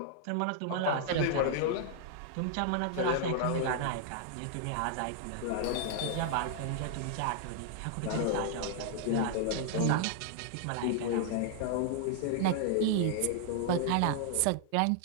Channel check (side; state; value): both; different; correlation -0.01